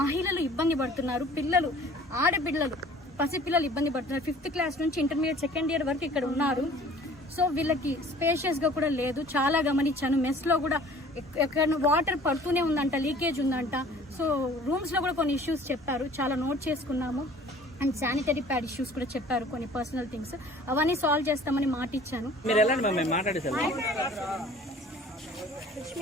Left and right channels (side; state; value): both; normal; correlation 0.50